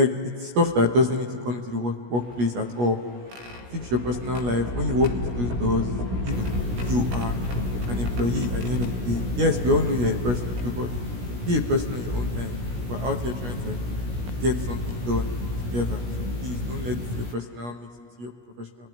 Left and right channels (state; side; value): late; left; 17 ms